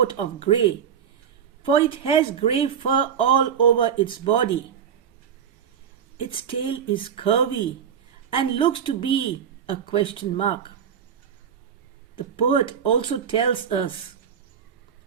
of grey, for it has grey fur all over its body. Its tail is curvy and looks to be a question mark. The poet also tells us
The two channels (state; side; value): quieter; left; 8.0 dB